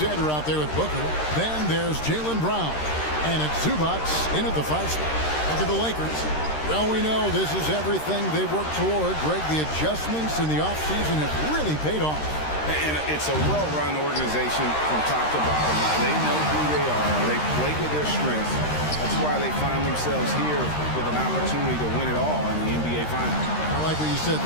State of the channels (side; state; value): right; late; 13 ms